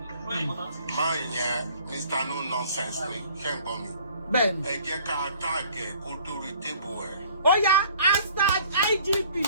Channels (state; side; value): inverted; both; correlation -0.54